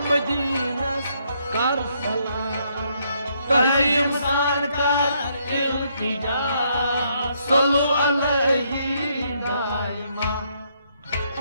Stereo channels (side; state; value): both; inverted; correlation -0.73